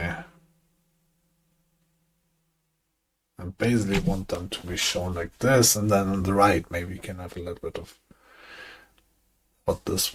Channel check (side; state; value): both; identical; correlation 1.00